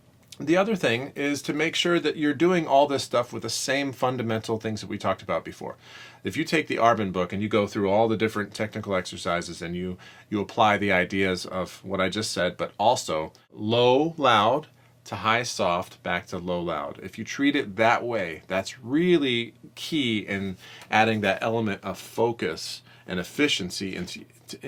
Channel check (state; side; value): identical; both; correlation 1.00